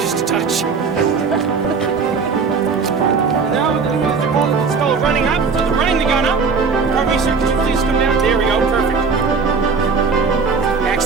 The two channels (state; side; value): quieter; left; 5.0 dB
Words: a touch. Now it's called running up. So they're running the gun up. Pardon me, sir, could you please come down? There we go, perfect.